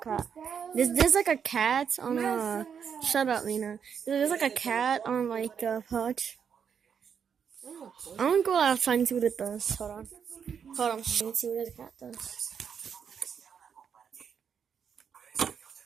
cat. There's like a cat on a. Shut up, Lena. There's like a cat on like a pouch. I'm gonna go outside and see what it does. Hold on. Let me see what the cat does.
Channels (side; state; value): left; quieter; 7.3 dB